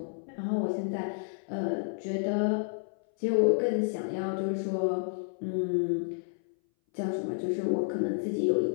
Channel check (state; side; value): silent; right; 58 dB below the other